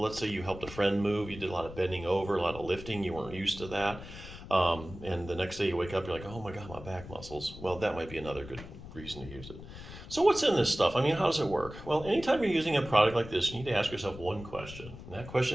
let's say you helped a friend move, you did a lot of bending over, a lot of lifting, you weren't used to that. And the next day you wake up, you're like, oh my God, my back muscles. Well, that might be another good reason to use it. So what's in this stuff? I mean, how does it work? Well, anytime you're using a product like this, you need to ask yourself one question. And that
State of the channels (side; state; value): left; noise; rumble, 14 dB below the sound